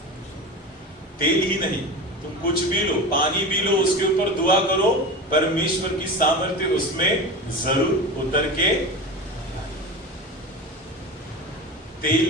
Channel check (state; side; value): normal; both; correlation 0.28